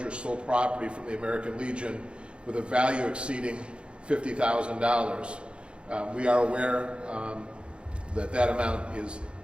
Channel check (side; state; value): left; late; 0.057 ms